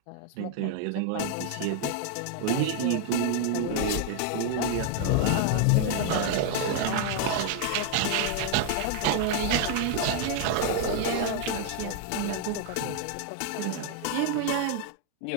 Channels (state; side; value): different; both; correlation 0.00